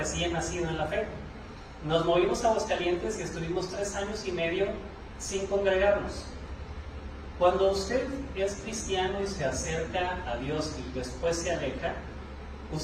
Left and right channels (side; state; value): both; identical; correlation 1.00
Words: nacido en la fe. Nos movimos a Aguascalientes y estuvimos 3 años y medio sin congregarnos. Cuando usted es cristiano y se acerca a Dios y después se aleja,